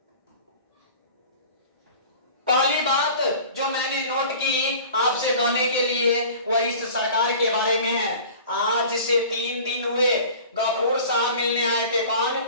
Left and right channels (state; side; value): inverted; both; correlation -0.42